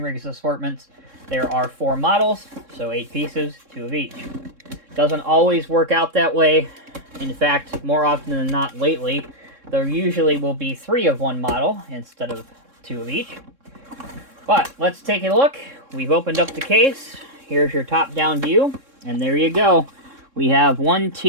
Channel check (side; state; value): left; late; 3.7 ms